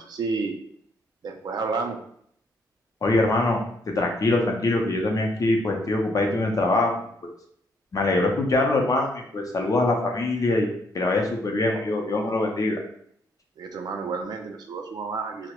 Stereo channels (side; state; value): both; normal; correlation 0.70